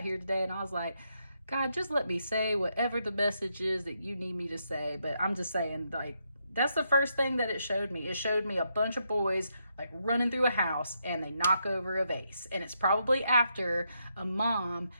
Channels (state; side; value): inverted; both; correlation -0.79